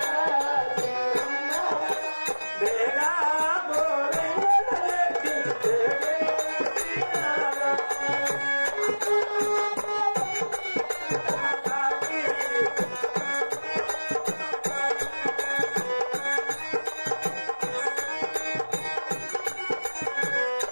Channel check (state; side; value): inverted; both; correlation -1.00